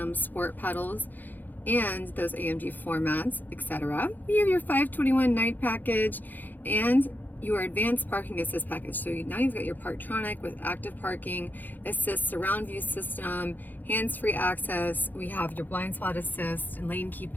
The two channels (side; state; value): right; late; 0.086 ms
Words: sport pedals, and those AMG floor mats, etc. We have your 521 night package and your advanced parking assist package. So now you've got your Parktronic with active parking assist, surround view system, hands-free access. We have your blind spot assist and lane keep